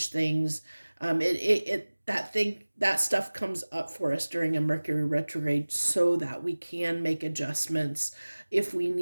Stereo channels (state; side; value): inverted; both; correlation -1.00